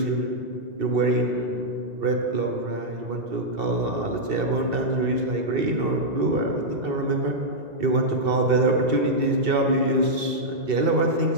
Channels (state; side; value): late; left; 2.7 ms